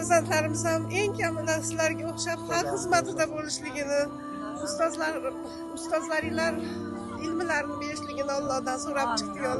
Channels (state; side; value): identical; both; correlation 1.00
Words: ham eng kamida sizlarga o'xshab xalq xizmatida bo'lishligini, ustozlaringlar ilmlarini berishligini Allohdan so'rab chiqdik.